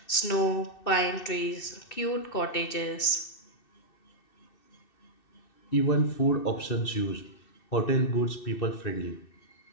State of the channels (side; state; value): right; late; 2.6 ms